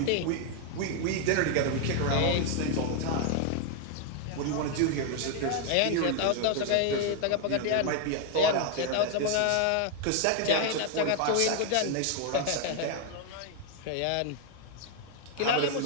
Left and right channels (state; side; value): different; both; correlation 0.00